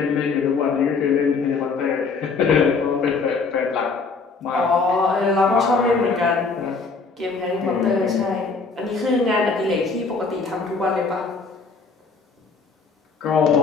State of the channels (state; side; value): quieter; right; 4.5 dB